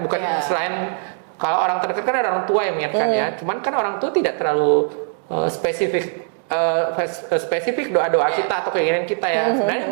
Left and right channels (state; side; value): silent; left; 58 dB below the other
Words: selain kalau orang terdekat kan ada orang tua yang mengingatkan ya. Cuman kan orang tua tidak terlalu spesifik doa-doa kita atau keinginan kita ya. Sebenarnya